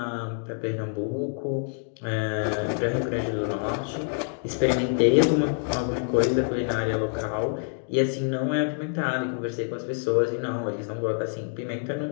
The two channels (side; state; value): right; silent; 60 dB below the other